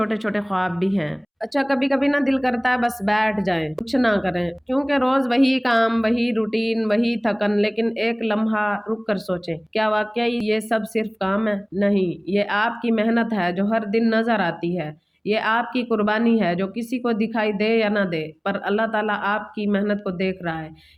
छोटे ख्वाब भी हैं। अच्छा, कभी कभी ना दिल करता है बस बैठ जाएं, कुछ ना करें, क्योंकि रोज वही काम, वही रूटीन, वही थकन। लेकिन एक लम्हा रुक कर सोचें, क्या वाकई ये सब सिर्फ काम है? नहीं, ये आपकी मेहनत है जो हर दिन नजर आती है। ये आपकी कुर्बानी है जो किसी को दिखाई दे या ना दे, पर अल्लाह ताला आपकी मेहनत को देख रहा है।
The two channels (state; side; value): identical; both; correlation 1.00